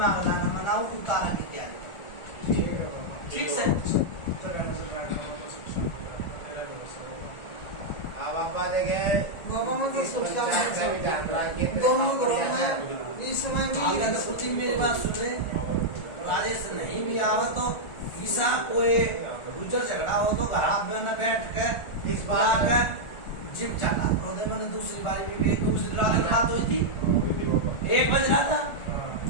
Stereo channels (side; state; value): right; late; 1.4 ms